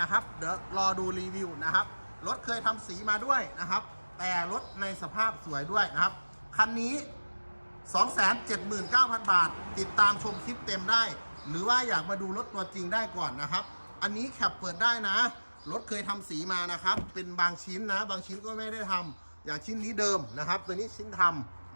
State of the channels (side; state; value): both; inverted; correlation -1.00